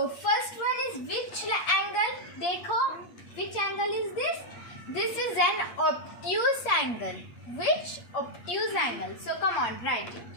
first one is which angle? Dekho, which angle is this? This is an obtuse angle. Which obtuse angle? So come on, write it.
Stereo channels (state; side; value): late; right; 8.5 ms